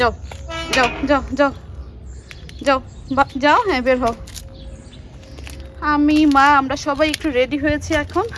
যাও যাও যাও যাও যাও, হ্যাঁ বের হও। আমি মা আমরা সবাই একটু রেডি হয়েছি। এখন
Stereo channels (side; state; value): both; identical; correlation 1.00